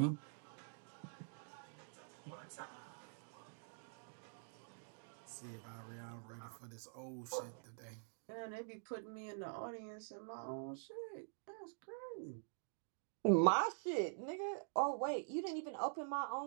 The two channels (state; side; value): silent; left; digital silence